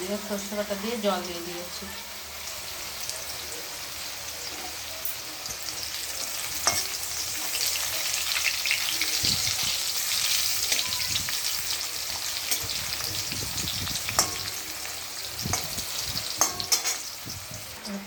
সর্ষে বাটা দিয়ে জল দিয়ে দিয়েছি।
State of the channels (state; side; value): identical; both; correlation 1.00